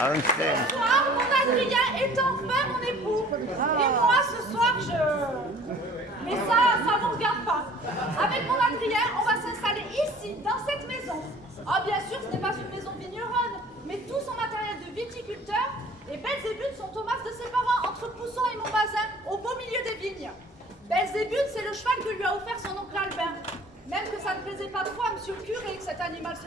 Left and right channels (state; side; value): normal; both; correlation 0.50